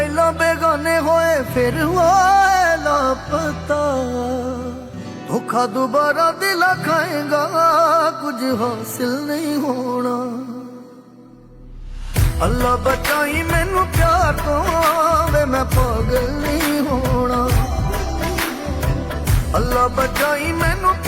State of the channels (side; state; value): both; identical; correlation 1.00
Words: ਬੇਗਾਨੇ ਹੋਏ ਫਿਰ ਹੋਏ ਲਾਪਤਾ। ਧੋਖਾ ਦੁਬਾਰਾ ਦਿਲ ਖਾਏਗਾ, ਕੁਝ ਹਾਸਿਲ ਨਹੀਂ ਹੋਣਾ। ਅੱਲਾ ਬਚਾਈ ਮੈਨੂੰ ਪਿਆਰ ਤੋਂ, ਵੇ ਮੈਂ ਪਾਗਲ ਨਹੀਂ ਹੋਣਾ। ਅੱਲਾ ਬਚਾਈ ਮੈਨੂੰ